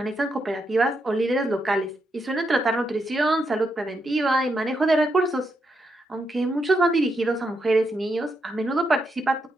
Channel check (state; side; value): normal; both; correlation 0.82